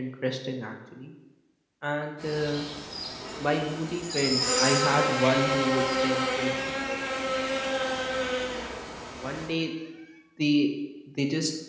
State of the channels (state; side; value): identical; both; correlation 1.00